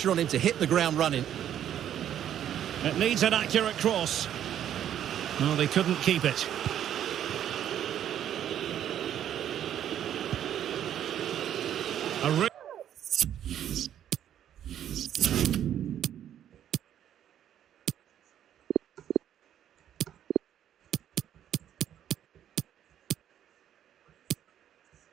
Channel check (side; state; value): left; quieter; 10.4 dB